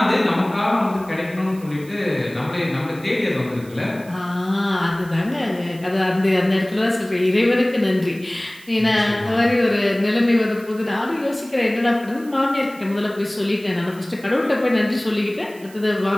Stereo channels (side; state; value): right; noise; hiss, 23 dB below the sound